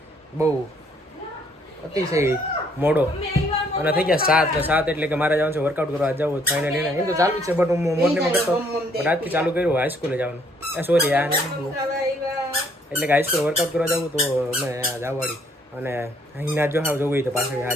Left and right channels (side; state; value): both; normal; correlation 0.66